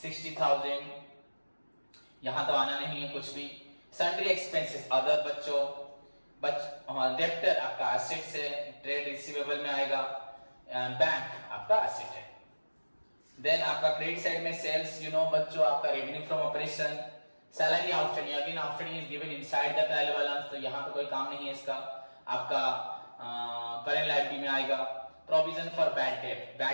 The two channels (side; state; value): both; inverted; correlation -1.00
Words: यहां तो आना नहीं है कुछ भी. सन्ड्री एक्सपेंसेस अदर बच्चों, डेप्टर आपका एसेट से, ट्रेड रिसीवेबल में आएगा, बैंक आपका एसेट है. देन आपका क्रेडिट साइड में सेल्स यू नो बच्चों आपका revenue from operation. Salary outstanding, again outstanding is given inside the trial balance, तो यहां पे कोई काम नहीं है इसका. आपका करेंट लायबिलिटी में आएगा. Provision for bad